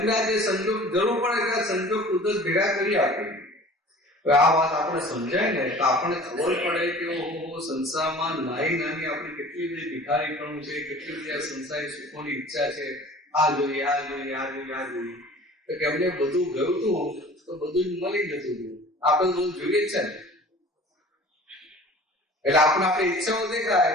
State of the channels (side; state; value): both; normal; correlation 0.45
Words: આ જે સંજોગ જરૂર પડે ત્યાં સંજોગ કુદરત ભેગા કરી આપે. આ વાત આપણે સમજાય ને તો આપણને ખબર પડે કે સંસારમાં નાની આપણી કેટલી બધી ભિખારીપણું છે, કેટલી બધી આ સંસારી સુખોની ઈચ્છા છે. આ જોઈએ, આ જોઈએ, આ જોઈએ, આ જોઈએ. તો કે એમને બધું ગયું હતું તો બધું જ મળી જતું હતું. આપણે બધું જોઈએ જ છે ને. એટલે આપણે આપણી ઈચ્છાઓ દેખાય